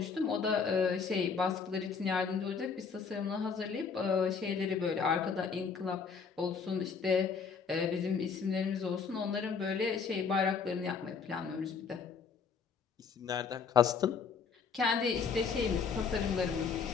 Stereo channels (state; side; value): quieter; right; 5.7 dB